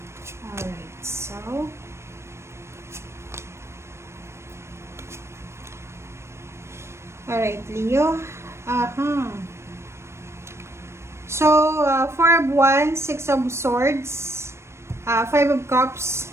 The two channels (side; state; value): left; late; 0.13 ms